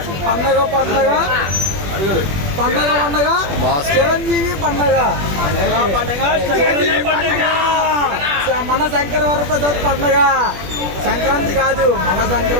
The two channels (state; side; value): late; left; 20 ms